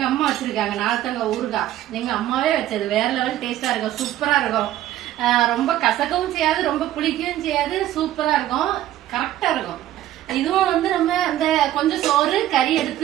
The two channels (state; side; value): quieter; left; 13.4 dB